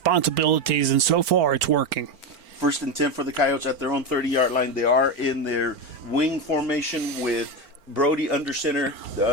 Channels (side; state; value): left; late; 4.4 ms